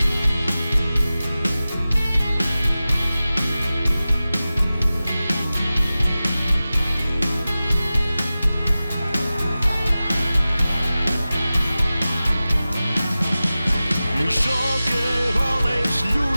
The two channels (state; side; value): inverted; both; correlation -0.96